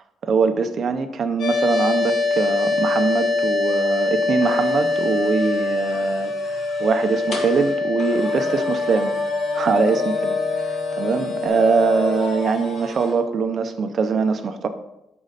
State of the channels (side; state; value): both; normal; correlation 0.77